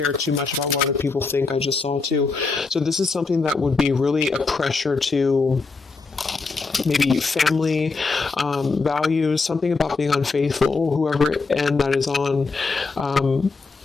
too much about what other people think. I just saw too. So this is something that would be really a pressure to maybe family, values, something about being unfaithful, whoever end that is on,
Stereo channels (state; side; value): quieter; right; 4.2 dB